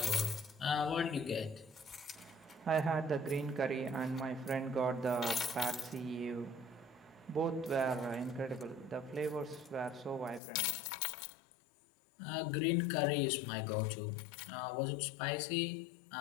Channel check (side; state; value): right; drops out; at 10.4 s